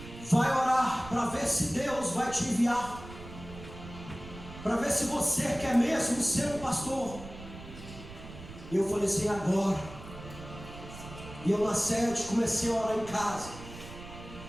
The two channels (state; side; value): noise; right; rumble, 14 dB below the sound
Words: Vai orar para ver se Deus vai te enviar, para ver se você quer mesmo ser um pastor. E eu falei assim: agora. E eu na sede comecei a orar em casa.